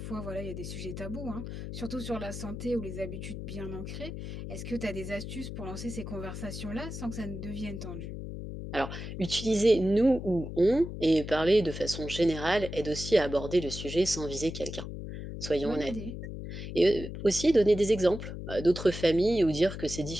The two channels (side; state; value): left; noise; hum, 8 dB below the sound